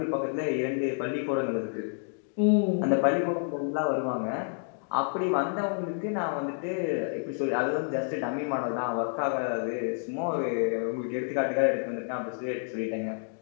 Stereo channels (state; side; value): silent; right; 58 dB below the other